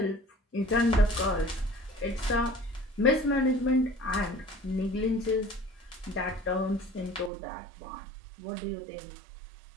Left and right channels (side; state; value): left; drops out; at 7.3 s